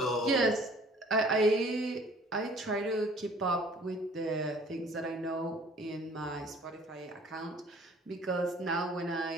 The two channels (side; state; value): both; normal; correlation 0.53